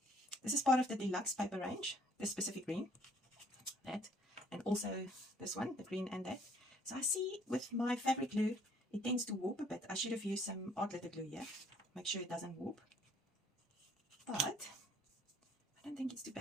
This is part of the deluxe paper range, this specific green, that, and also this one, the green and that. So I see with my fabric glue, it tends to warp a bit. I should have used some art glitter glue here, make sure it doesn't warp. But I don't think it's too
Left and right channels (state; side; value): normal; both; correlation 0.61